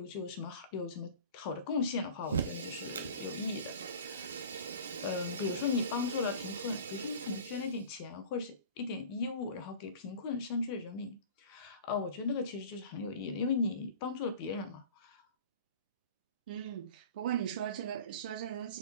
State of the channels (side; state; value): both; inverted; correlation -0.40